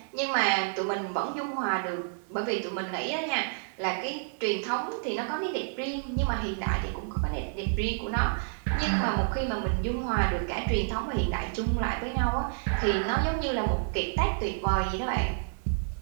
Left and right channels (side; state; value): left; silent; digital silence